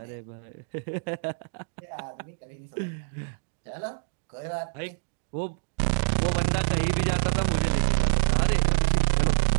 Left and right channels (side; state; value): left; silent; digital silence